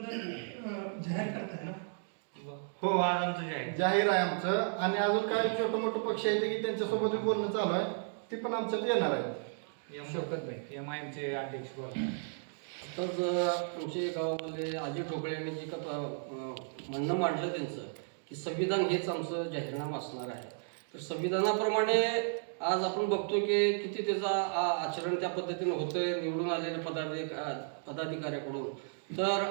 जाहीर करताय ना? हो, आज आमचं जाहीर आहे आमचं. आणि अजून काही छोटं मोठं पक्ष आहेत की त्यांच्यासोबत बोलणं चालू आहे, ती पण आमच्यात येणार आहे. MIMचे अध्यक्ष बोला. तर आमच्या गावामध्ये अजय ठोकळे यांनी जे का म्हणणं मांडलं त्यांचं की संविधान हेच आमचं जाहीरनामा असणार आहे. तर संविधानाप्रमाणे आज आपण बघतो की किती त्याचा आचरण त्या पद्धतीनं होतंय निवडून आलेल्या पदाधिकाऱ्याकडून. तर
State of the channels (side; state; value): left; silent; digital silence